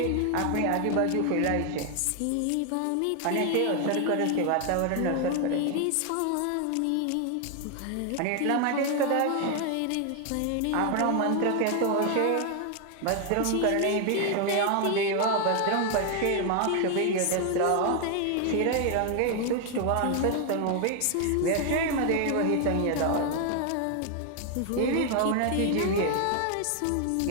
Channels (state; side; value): different; both; correlation 0.00